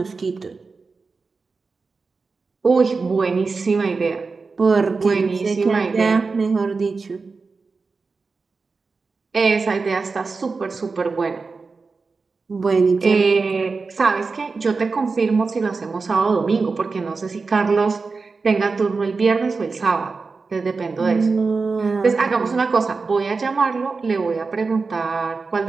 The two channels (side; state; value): left; quieter; 4.3 dB